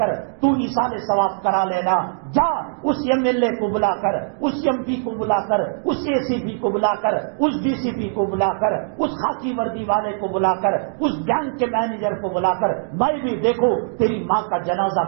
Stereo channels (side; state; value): left; silent; digital silence